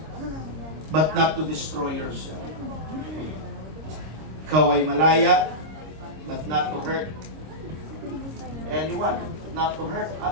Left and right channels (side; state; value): left; late; 26 ms